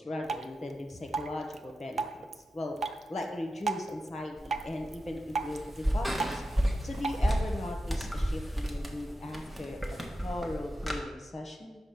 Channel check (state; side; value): normal; both; correlation 0.91